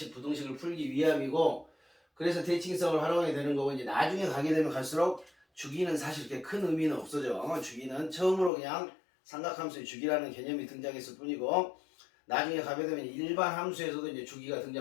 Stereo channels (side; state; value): right; drops out; at 8.5 s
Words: 부등식을 풀기 위함이고, 그래서 대칭성을 활용하게 되는 거고, 이제 나중에 가게 되면 갈수록 주기는 사실 그렇게 큰 의미는 없어져. 주기는 처음으로 그냥 삼각함수의 주기라는 개념이 등장했을 뿐이고, 나중에 가게 되면 일반 함수에서도 이제 주기가